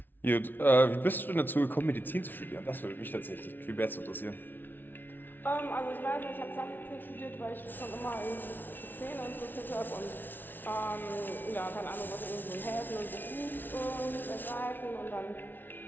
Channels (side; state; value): right; late; 0.093 ms